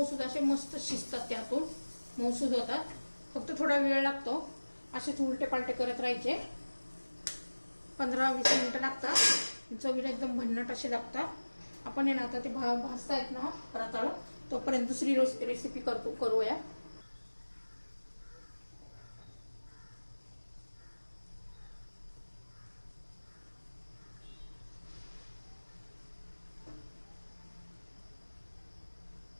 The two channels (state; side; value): inverted; both; correlation -1.00